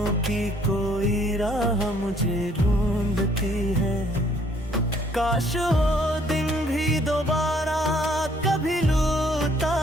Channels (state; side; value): normal; both; correlation 0.63